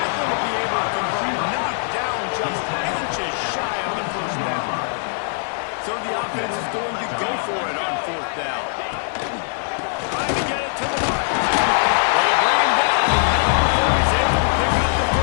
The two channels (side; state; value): right; silent; digital silence